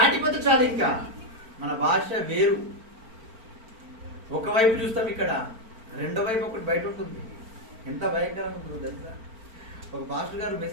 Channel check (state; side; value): late; left; 4.4 ms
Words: చాలు, ఇంకా మన భాష వేరు. ఒకవైపు చూస్తాం, ఇక్కడ రెండో వైపు ఒకటి బయట ఉంటుంది. ఎంత భయంకరంగా ఉంటుందో తెలుసా? ఒక పాస్టర్ గారు